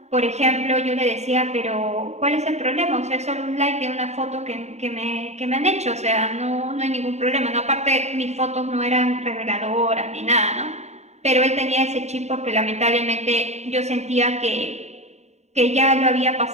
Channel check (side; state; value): left; late; 0.32 ms